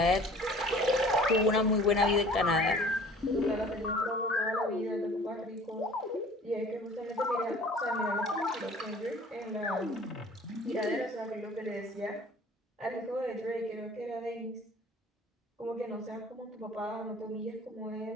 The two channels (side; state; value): both; normal; correlation 0.49